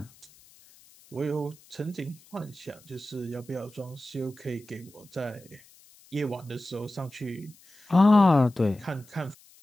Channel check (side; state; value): left; noise; hiss, 26 dB below the sound